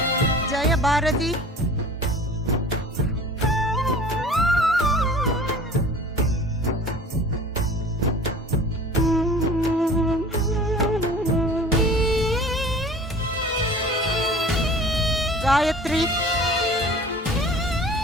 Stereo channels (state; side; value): normal; both; correlation 0.43